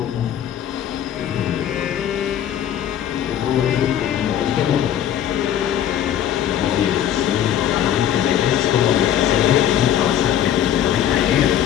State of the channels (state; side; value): quieter; right; 10.5 dB